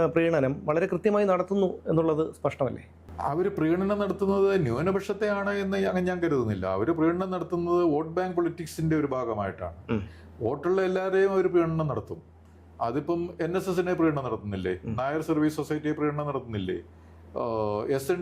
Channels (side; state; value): both; identical; correlation 1.00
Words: പ്രീണനം വളരെ കൃത്യമായി നടത്തുന്നു എന്നുള്ളത് സ്പഷ്ടമല്ലേ? അവർ പ്രീണനം നടത്തുന്നത് ന്യൂനപക്ഷത്തെയാണ് എന്ന് ഞാൻ കരുതുന്നില്ല. അവർ പ്രീണനം നടത്തുന്നത് വോട്ട് ബാങ്ക് പൊളിറ്റിക്സിന്റെ ഒരു ഭാഗമായിട്ടാണ്. വോട്ടുള്ള എല്ലാവരെയും അവർ പ്രീണനം നടത്തും. അതിപ്പം NSSനെ പ്രീണനം നടത്തുന്നില്ലേ, നായർ സർവീസ് സൊസൈറ്റിയെ പ്രീണനം നടത്തുന്നില്ലേ,